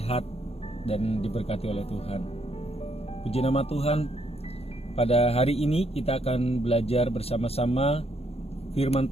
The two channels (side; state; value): right; late; 0.29 ms